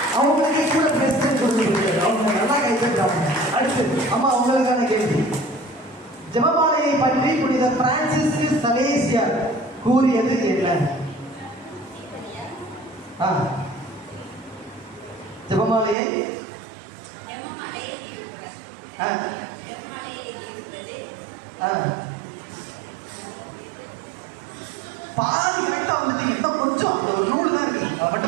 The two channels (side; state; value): left; drops out; at 16.0 s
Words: அவங்களுக்கு கூட பிரசிடன்ட் கொடுத்துருக்கு, அவங்க நல்லா கைப்பற்றாங்க. அடுத்து அம்மா உங்களுக்கான கேள்வி. ஜெபமாலையை பற்றி புனித பிரான்சிஸ் சலேசியர் கூறியது என்ன? ஜெபமாலையை பாதி கரெக்டா வந்துட்டீங்க. இன்னும் கொஞ்சம் ஒரு நூல் தான் இருக்கு, அதை